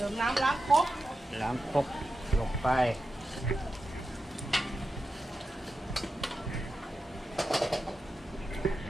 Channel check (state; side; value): normal; both; correlation 0.90